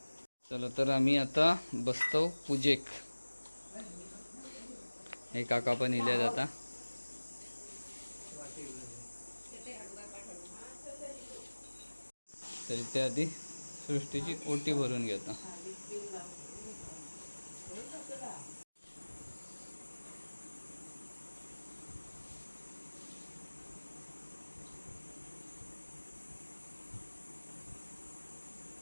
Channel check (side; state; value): both; inverted; correlation -1.00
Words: चला तर आम्ही आता बसतो पूजेक. हे काका पण इले जाता. तरी ते आधी सृष्टीची ओटी भरून घेता.